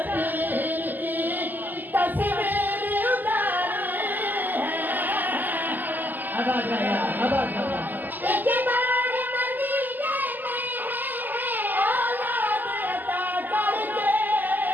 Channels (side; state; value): left; late; 0.086 ms